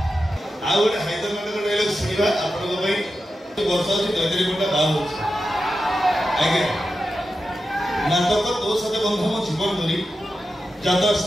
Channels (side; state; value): both; normal; correlation 0.90